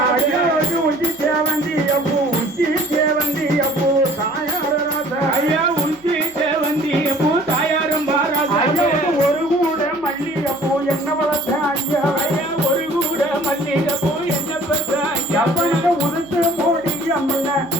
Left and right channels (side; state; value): right; noise; hum, 30 dB below the sound